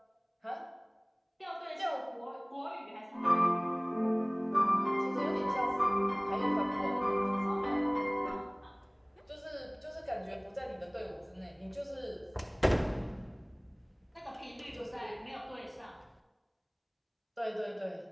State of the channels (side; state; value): both; identical; correlation 1.00